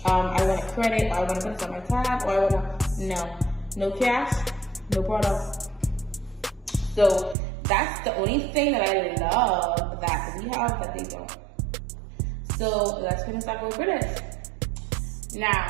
I want a credit, or I want to put it on my tab, or I want to, no cash, no product. So that's the only thing that I love that we have that they don't. So let's finish up with British.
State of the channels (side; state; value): left; drops out; at 7.4 s